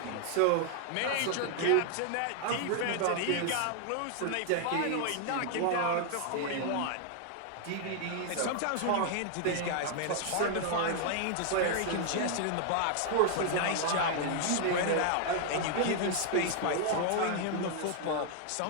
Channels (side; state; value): both; different; correlation 0.00